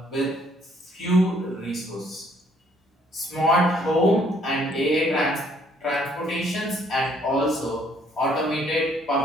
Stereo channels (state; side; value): normal; both; correlation 0.64